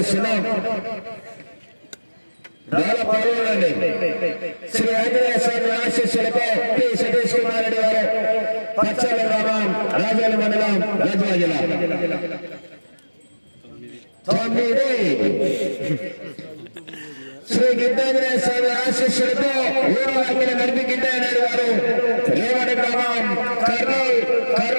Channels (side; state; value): both; inverted; correlation -1.00